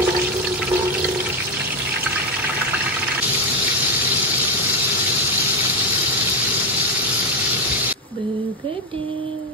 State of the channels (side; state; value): both; normal; correlation 0.08